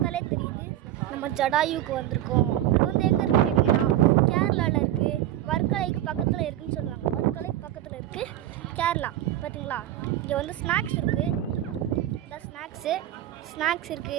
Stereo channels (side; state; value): left; quieter; 13.0 dB